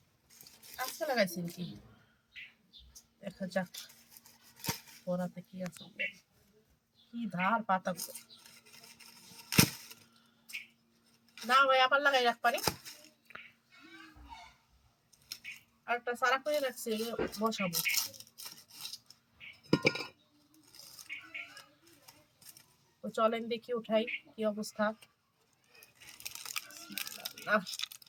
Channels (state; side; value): identical; both; correlation 1.00